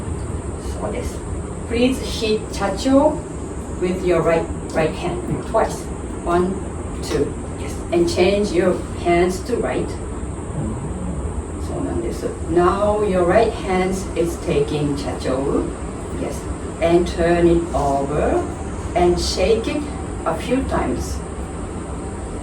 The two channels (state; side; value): identical; both; correlation 1.00